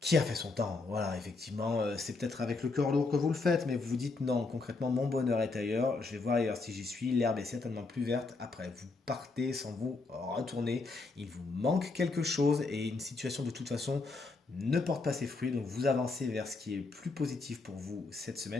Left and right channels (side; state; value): right; quieter; 3.8 dB